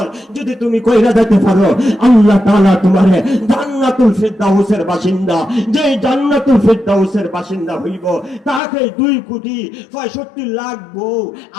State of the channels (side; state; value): right; drops out; at 8.6 s